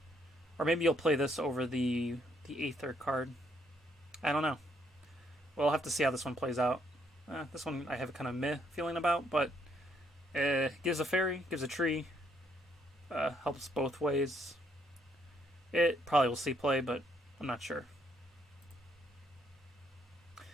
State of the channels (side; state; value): both; normal; correlation 0.71